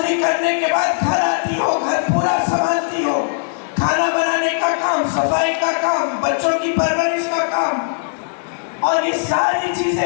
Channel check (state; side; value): silent; right; digital silence